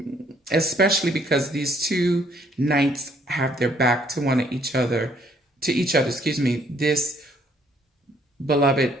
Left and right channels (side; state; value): both; normal; correlation 0.65